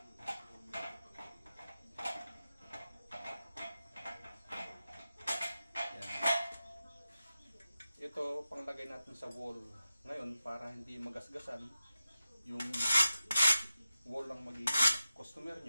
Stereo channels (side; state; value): both; inverted; correlation -0.92